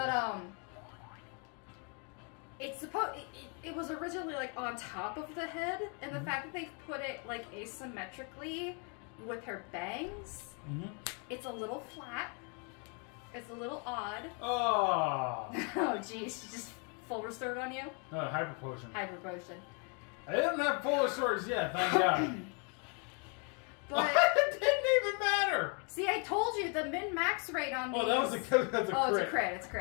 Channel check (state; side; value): quieter; right; 36.8 dB